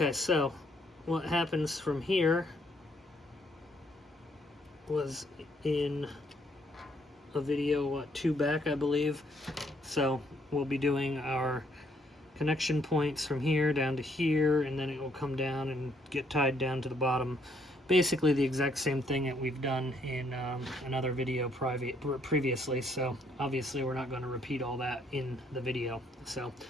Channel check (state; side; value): normal; both; correlation 0.69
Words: so what happens from here was in a video 2 back, I believe. So we'll be doing our connection points from here down to here, and then it will come down and get tied down to the bottom. Basically the exact same thing that we've done in another video previously, so obviously we're not going to repeat all that in the video. So